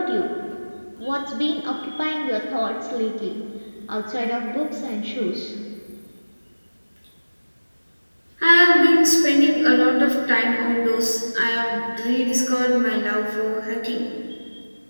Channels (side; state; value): both; inverted; correlation -1.00